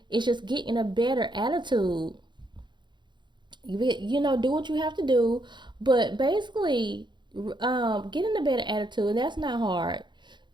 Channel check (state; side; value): late; left; 0.22 ms